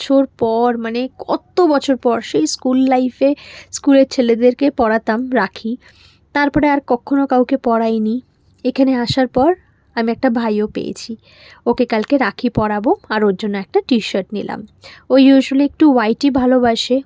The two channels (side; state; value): both; identical; correlation 1.00